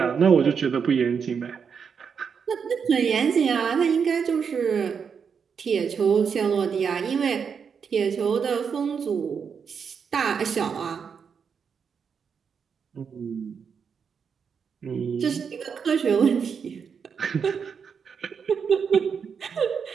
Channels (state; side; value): quieter; left; 6.5 dB